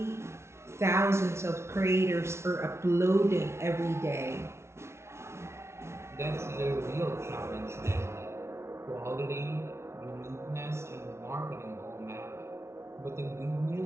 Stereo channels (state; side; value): late; left; 0.13 ms